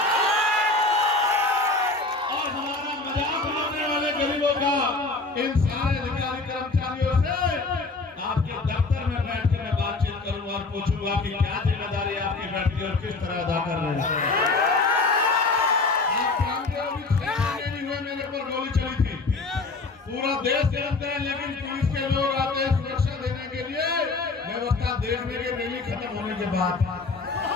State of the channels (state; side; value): quieter; right; 3.6 dB